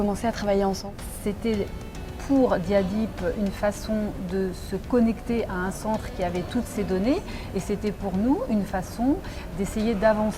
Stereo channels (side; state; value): both; identical; correlation 1.00